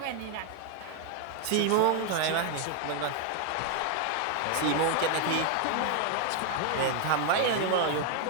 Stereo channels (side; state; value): both; different; correlation 0.00